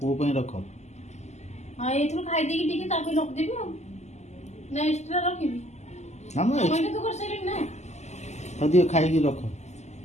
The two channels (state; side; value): late; right; 0.33 ms